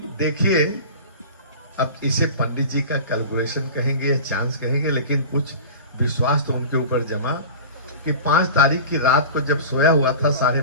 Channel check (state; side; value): inverted; both; correlation -0.36